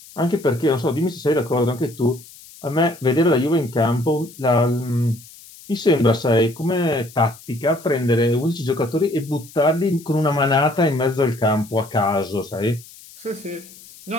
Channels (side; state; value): left; noise; hiss, 21 dB below the sound